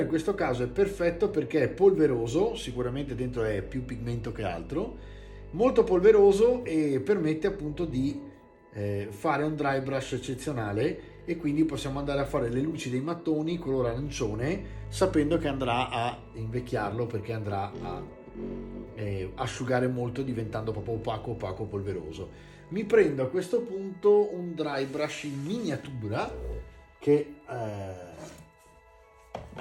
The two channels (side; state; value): both; identical; correlation 1.00